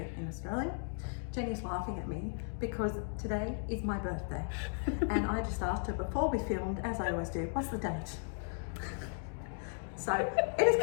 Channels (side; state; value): right; silent; 54 dB below the other